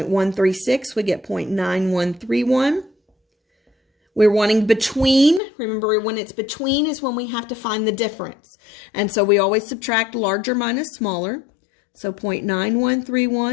we get 0.9131. We're wanting between. Remember, when it's between is when we have to find the difference. And so we always subtract larger minus smaller. So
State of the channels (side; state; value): right; drops out; at 5.4 s